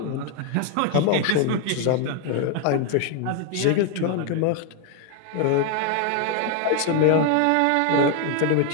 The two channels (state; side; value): different; both; correlation 0.01